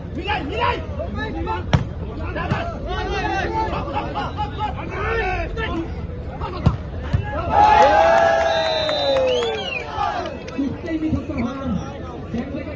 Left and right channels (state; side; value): identical; both; correlation 1.00